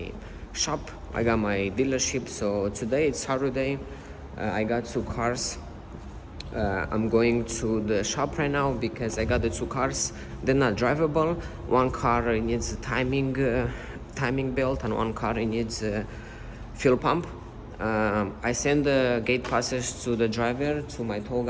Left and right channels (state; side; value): identical; both; correlation 1.00